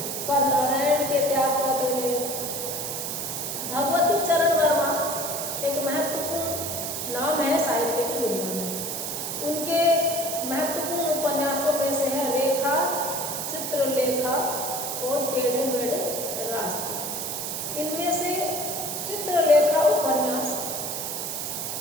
पर नारायण के त्याग पत्र में भगवती चरण वर्मा एक महत्वपूर्ण नाम है साहित्य की दुनिया में। उनके महत्वपूर्ण उपन्यासों में से है रेखा, चित्रलेखा और टेढ़े मेढ़े रास्ते। इनमें से चित्रलेखा उपन्यास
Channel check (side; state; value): right; noise; hiss, 4 dB below the sound